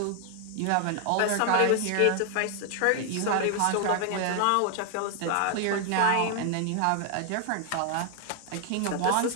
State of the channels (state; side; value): different; both; correlation 0.00